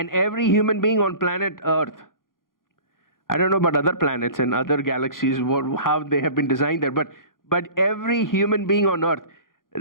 every human being on planet Earth, I don't know about other planets and other galaxies, how they have been designed there, but every human being on Earth,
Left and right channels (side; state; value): right; late; 0.91 ms